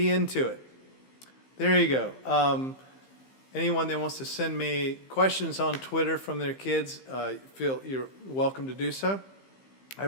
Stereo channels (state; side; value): late; right; 15 ms